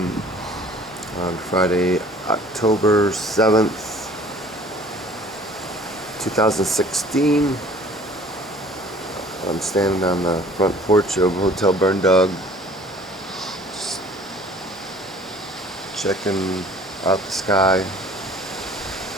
on Friday, October 7th, 2016. I'm standing on the front porch of Hotel Berndog, just checking out the sky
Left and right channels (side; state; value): both; normal; correlation 0.51